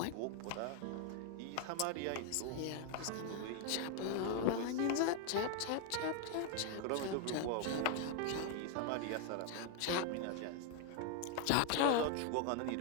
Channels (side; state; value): both; different; correlation 0.00